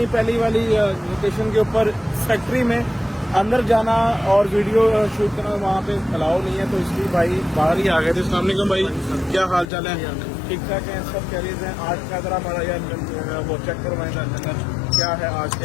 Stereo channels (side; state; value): right; drops out; at 9.7 s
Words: पहली वाली लोकेशन के ऊपर, फैक्ट्री में। अंदर जाना और वीडियो शूट करना वहाँ पे अलाउ नहीं है, तो इसलिए भाई बाहर ही आ गए थे। अस्सलाम वालेकुम भाई, क्या हाल चाल है? ठीक ठाक है, सब कह रहे हैं। आज का जरा हमारा यार वो चेक करवाएं लंगर क्या है आज